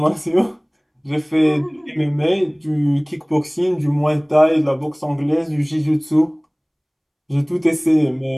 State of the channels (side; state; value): both; identical; correlation 1.00